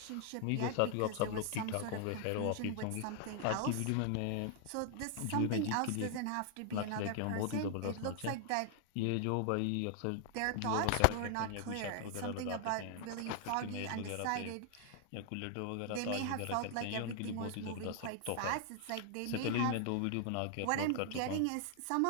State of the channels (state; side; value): different; both; correlation 0.00